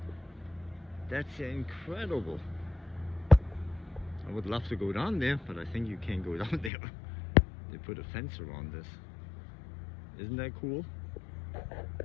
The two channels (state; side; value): drops out; right; at 6.7 s